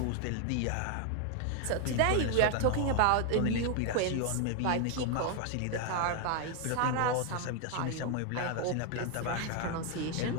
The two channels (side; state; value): both; different; correlation 0.00